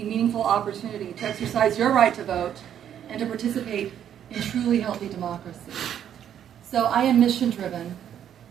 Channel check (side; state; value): left; quieter; 9.7 dB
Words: meaningful opportunity to exercise your right to vote and to participate in truly healthy democracy. So I am mission-driven.